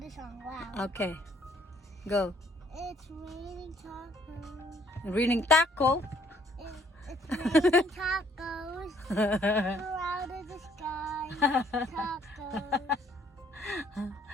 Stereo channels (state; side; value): normal; both; correlation 0.63